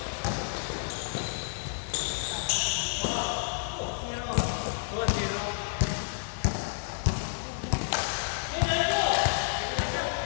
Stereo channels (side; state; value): right; silent; 58 dB below the other